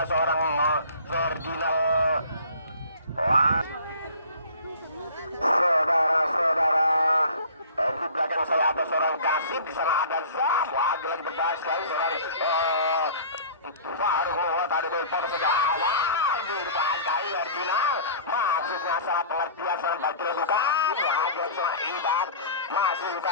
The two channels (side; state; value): both; inverted; correlation -0.43